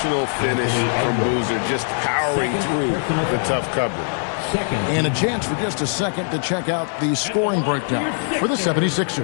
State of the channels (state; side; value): silent; right; 65 dB below the other